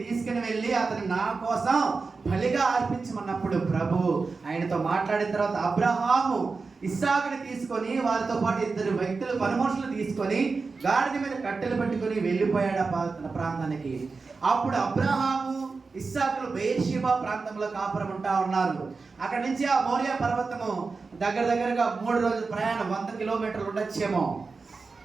తీసుకుని వెళ్ళి అతను నా కోసం బలిగా అర్పించమన్నప్పుడు ప్రభు ఆయనతో మాట్లాడిన తర్వాత అబ్రహాము ఇస్సాకుని తీసుకొని వారితో పాటు ఇద్దరు వ్యక్తులు, పనిమనుషులు తీసుకొని గాడిద మీద కట్టెలు పెట్టుకొని వెళ్ళిపోయాడు ఆ ప్రాంతానికి. అప్పుడు అబ్రహాము ఇస్సాకులు బెయేర్షెబా ప్రాంతంలో కాపురం ఉంటా ఉన్నారు. అక్కడి నుంచి ఆ మోరియా పర్వతము దగ్గరగా 3 రోజుల ప్రయాణం, 100 కిలోమీటర్లు ఉండొచ్చేమో.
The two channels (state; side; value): quieter; left; 4.3 dB